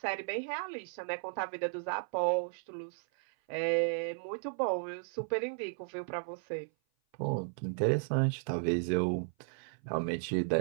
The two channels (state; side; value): silent; left; 55 dB below the other